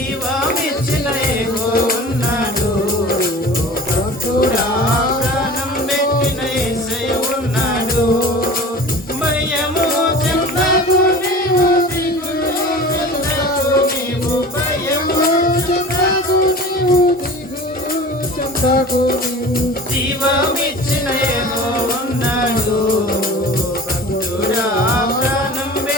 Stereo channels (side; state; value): both; normal; correlation 0.39